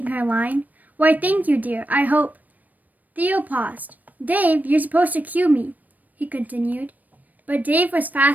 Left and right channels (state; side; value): late; left; 0.081 ms